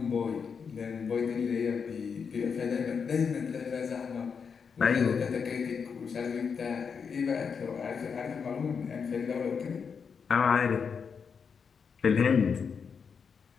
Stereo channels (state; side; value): quieter; right; 6.1 dB